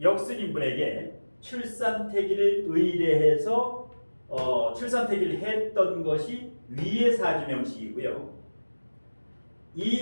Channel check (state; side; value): inverted; both; correlation -1.00